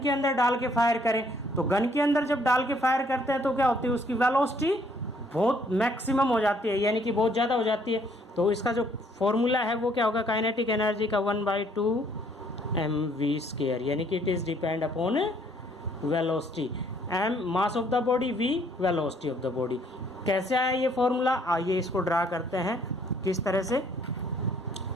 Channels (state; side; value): normal; both; correlation 0.64